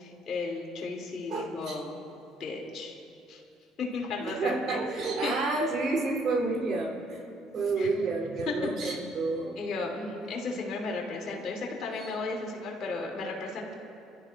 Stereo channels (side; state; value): both; normal; correlation 0.65